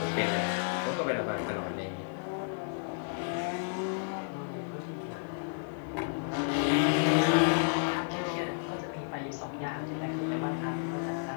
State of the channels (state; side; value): silent; right; 57 dB below the other